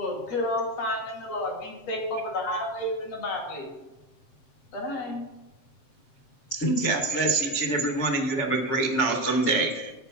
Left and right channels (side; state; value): right; late; 7.6 ms